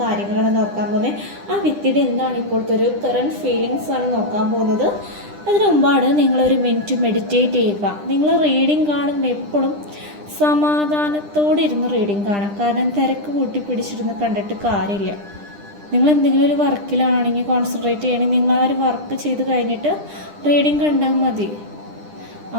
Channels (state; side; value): late; left; 10 ms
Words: കാര്യങ്ങളാണ് നോക്കാൻ പോകുന്നത്. ആ വ്യക്തിയുടെ എന്താണ് ഇപ്പോഴത്തെ ഒരു കറൻറ്റ് ഫീലിങ്സ് ആണ് നോക്കാൻ പോകുന്നത്. അതിനു മുമ്പാണ് നിങ്ങളൊരു മിനിറ്റ് മെഡിറ്റേറ്റ് ചെയ്യുക. നിങ്ങൾ റീഡിങ് കാണുമ്പോൾ എപ്പോഴും സമാധാനത്തോടെ ഇരുന്ന് റീഡിങ് കാണാം. കാരണം തിരക്ക് കൂട്ടി പിടിച്ചിരുന്ന് കണ്ടിട്ട് കാര്യമില്ല. നിങ്ങൾ എന്തെങ്കിലും ഒരു വർക്കിലാണെങ്കിൽ കോൺസെൻട്രേറ്റ് ചെയ്യണമെങ്കിൽ നിങ്ങൾ ആ ഒരു വർക്ക് ചെയ്ത് കഴിഞ്ഞിട്ട് റീഡിങ് കണ്ടാൽ മതി.